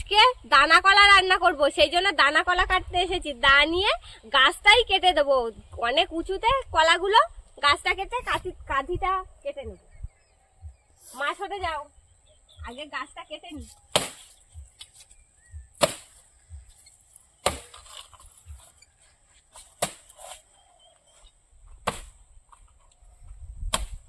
দানা কলা রান্না করব, সেই জন্য দানা কলা কাটতে এসেছি। দা নিয়ে গাছটাই কেটে দেবো, অনেক উঁচুতে কলাগুলো। গাছটা কেটে কাঁধিটা কেটে নেব। মাছ হতে যাও, আগে গাছটা কেটে নি।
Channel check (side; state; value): both; identical; correlation 1.00